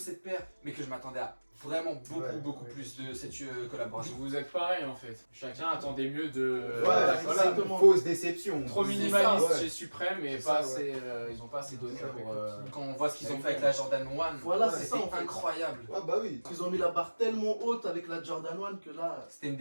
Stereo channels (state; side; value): inverted; both; correlation -1.00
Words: paire, mais que je m'attendais à vraiment beaucoup plus de cette collaboration. Vous êtes pareil en fait. Chacun attendait mieux de Ouais, la c'est collab. une fausse déception. Trop C'est minimaliste ça, ouais. chez Supreme et C'est pas ça, assez, ils ont pas assez donné C'est ça, pour... Quand on voit ce qu'ils ont fait avec la Jordan 1, Voilà, c'était c'est ça, en fait. incroyable. Ouais, bah oui. Ils ont mis la barre tellement haute avec la Jordan 1 que là. C'était une